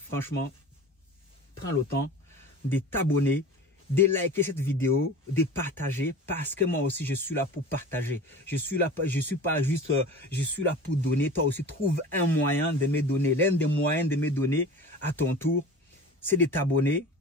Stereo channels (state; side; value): normal; both; correlation 0.37